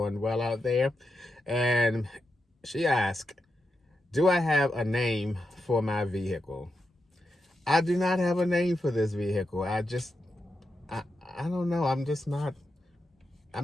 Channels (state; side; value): normal; both; correlation 0.87